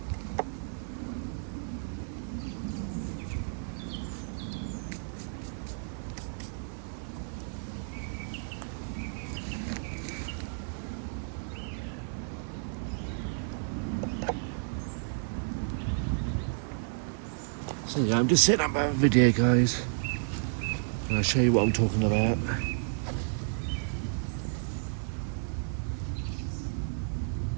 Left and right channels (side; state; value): left; silent; 57 dB below the other